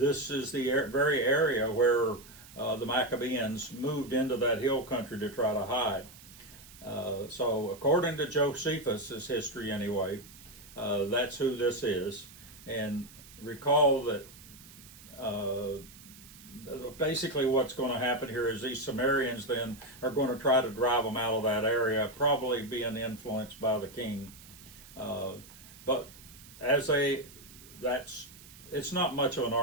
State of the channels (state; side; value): noise; right; hiss, 19 dB below the sound